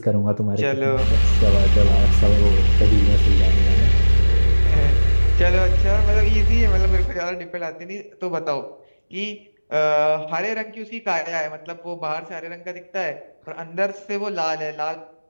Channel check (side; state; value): both; inverted; correlation -1.00